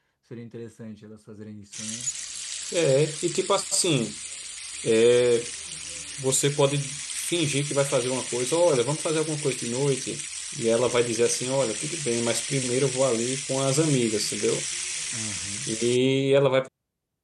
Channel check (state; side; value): identical; both; correlation 1.00